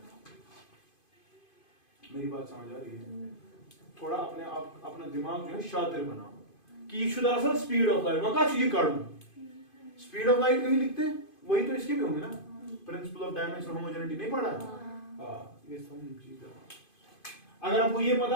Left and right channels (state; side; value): late; right; 2.5 ms